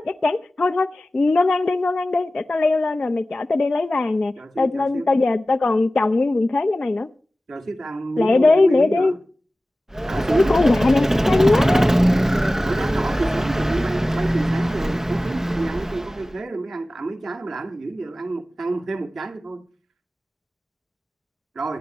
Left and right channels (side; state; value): both; normal; correlation 0.96